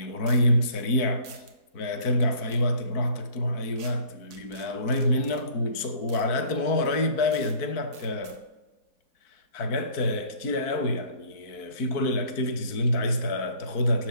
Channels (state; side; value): late; right; 4.5 ms